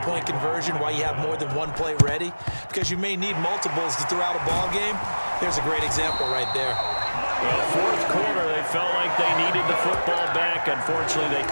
conversion, why you have more than one play ready, because you may need multiples to throw out a ball game. There's a great example right there. Well, 4th quarter, they felt like they needed the football back. Unfortunately, they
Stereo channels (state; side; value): inverted; both; correlation -1.00